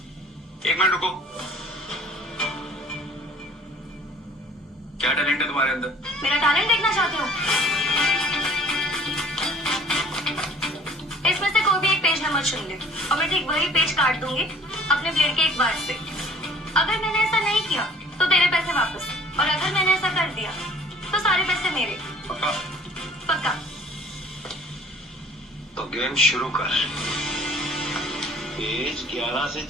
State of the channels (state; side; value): normal; both; correlation 0.51